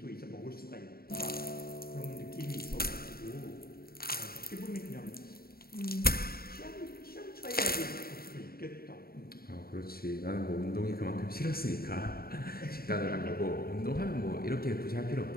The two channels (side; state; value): right; late; 0.44 ms